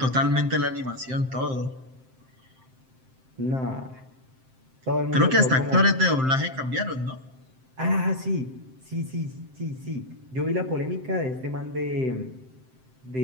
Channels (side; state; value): left; late; 7.7 ms